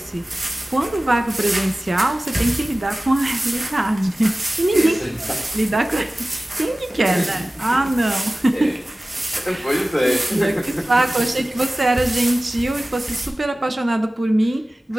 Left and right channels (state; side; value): normal; both; correlation 0.97